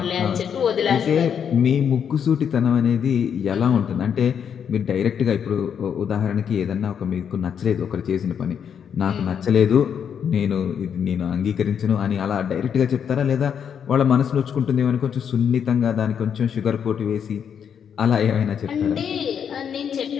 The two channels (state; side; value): quieter; right; 7.8 dB